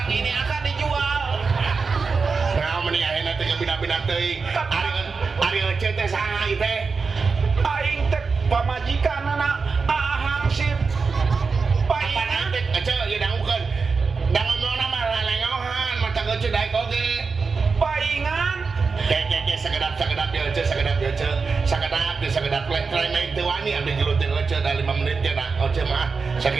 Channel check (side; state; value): left; quieter; 4.8 dB